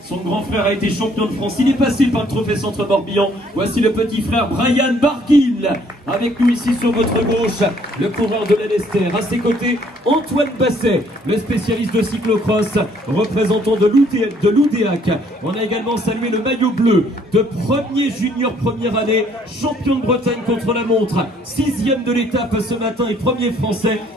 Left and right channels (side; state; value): both; normal; correlation 0.63